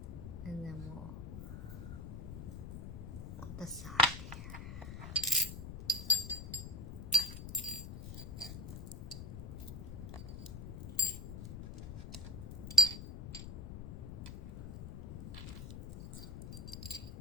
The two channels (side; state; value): left; noise; rumble, 8 dB below the sound